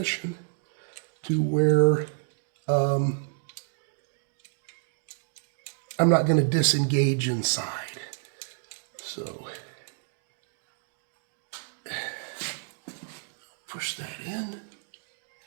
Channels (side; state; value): left; silent; digital silence